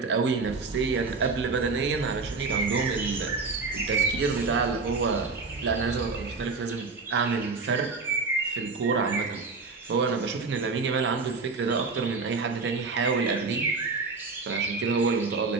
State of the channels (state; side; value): quieter; left; 4.3 dB